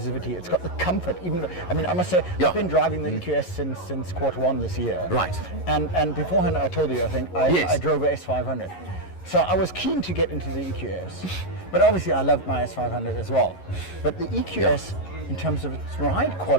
it's got the comfort. Even I mean, I must say, I've been driving the EQS since Q1 this year. Right. And beforehand, I told you, I think I drove a S500. So I was keen to get into the EQS, but obviously I loved my S500 as well. But the EQS, in terms of its ride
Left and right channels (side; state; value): right; late; 11 ms